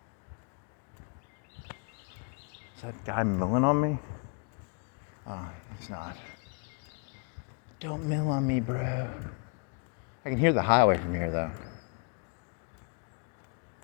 Is that guy milling on me? Oh, it's not. Don't mill on me, bro. I can hear the highway from here, though.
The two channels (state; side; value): quieter; right; 37.7 dB